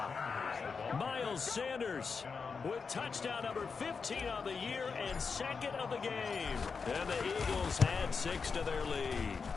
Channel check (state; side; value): quieter; right; 5.2 dB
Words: Miles Sanders with touchdown number 15 on the year and second of the game. And the Eagles had 6 to their lead.